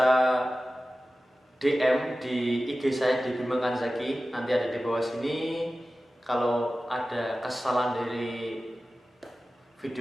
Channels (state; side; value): normal; both; correlation 0.95